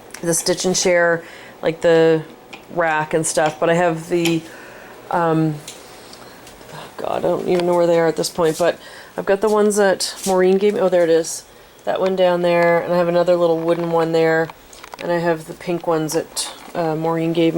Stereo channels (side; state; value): both; identical; correlation 1.00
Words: the Stitch and Share, like the rack and stuff, but I have the oh god, I don't even know where they are at this point, but I've got the ones that Maureen gave me. Oh, there it is. That one down there, and I have another little wooden one there, and I have the pink ones that Maureen gave